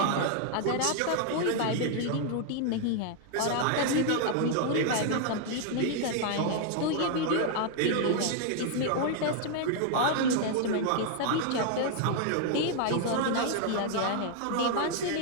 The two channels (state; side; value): different; both; correlation 0.00